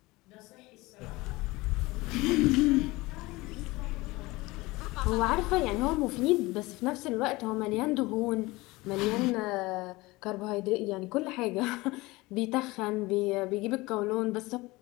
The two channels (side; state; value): right; quieter; 21.4 dB